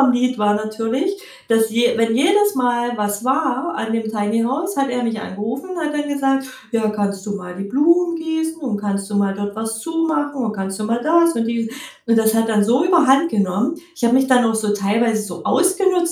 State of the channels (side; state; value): both; identical; correlation 1.00